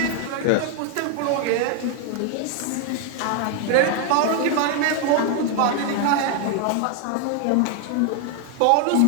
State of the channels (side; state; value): both; different; correlation 0.00